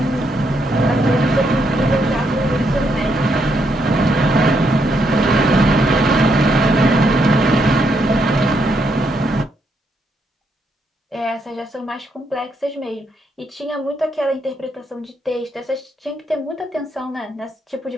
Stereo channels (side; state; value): both; normal; correlation 0.77